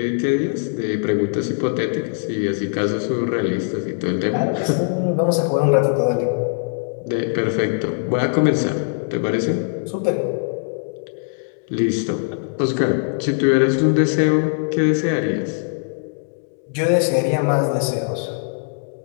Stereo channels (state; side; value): silent; right; digital silence